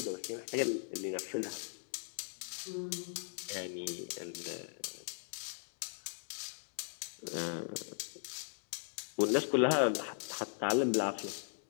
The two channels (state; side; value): silent; right; digital silence